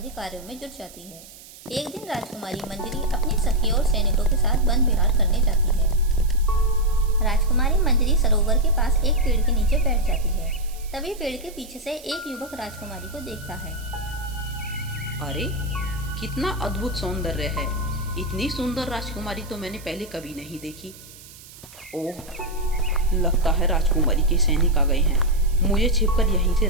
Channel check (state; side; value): noise; right; hiss, 19 dB below the sound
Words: कार्यों में जुट जाती है। एक दिन राजकुमारी मंजरी अपनी सखियों और सैनिकों के साथ वन विहार करने जाती है। राजकुमारी मंजरी सरोवर के पास एक पेड़ के नीचे बैठ जाती है। तभी पेड़ के पीछे से एक युवक राजकुमारी को देखता है। अरे, कितना अद्भुत सौंदर्य है। इतनी सुंदर राजकुमारी तो मैंने पहले कभी नहीं देखी। ओह, लगता है राजकुमारी के सैनिक आ गए हैं। मुझे छिपकर यहीं से